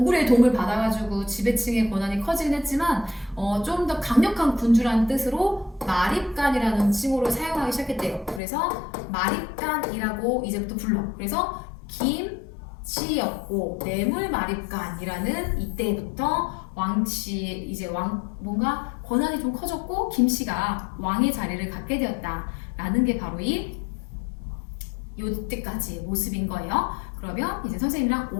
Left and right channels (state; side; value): drops out; right; at 8.4 s